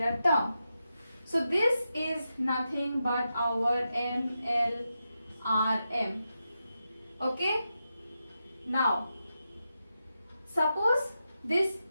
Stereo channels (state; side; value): inverted; both; correlation -0.88